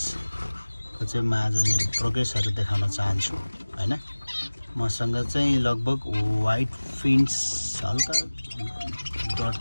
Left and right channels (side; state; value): both; inverted; correlation -1.00